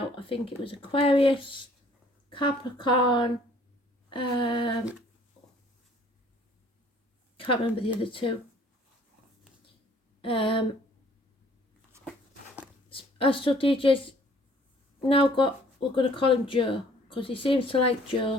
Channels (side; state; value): both; normal; correlation 0.57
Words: I think it was Aquarius, Capricorn, can't remember the other two. Astral DJ's now got, we're going to call him Joe, because he seems to like